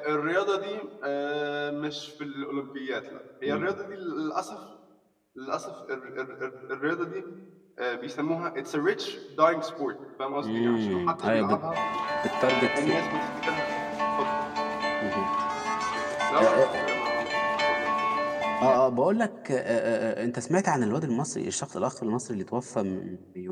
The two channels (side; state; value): both; identical; correlation 1.00